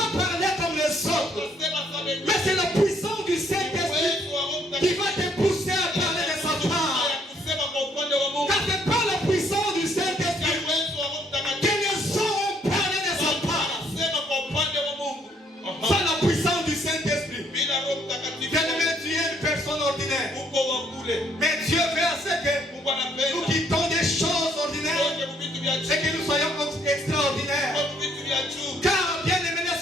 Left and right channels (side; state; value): both; normal; correlation 0.67